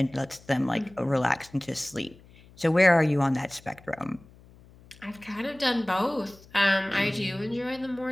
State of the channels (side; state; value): left; noise; hum, 24 dB below the sound